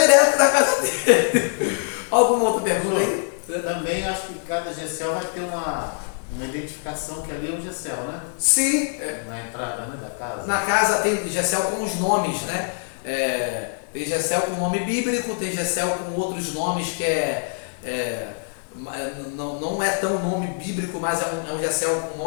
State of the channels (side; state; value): right; silent; 63 dB below the other